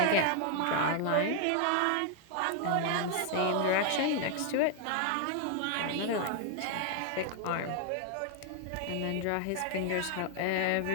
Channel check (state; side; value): different; both; correlation 0.00